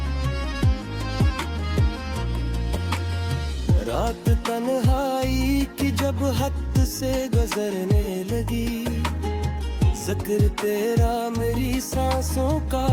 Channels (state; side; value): identical; both; correlation 1.00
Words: रात तन्हाई की जब हद से गुजरने लगी, जिक्र तेरा मेरी सांसों का